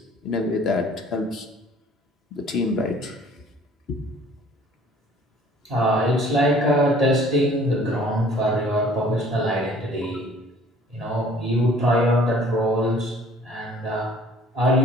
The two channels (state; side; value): normal; both; correlation 0.53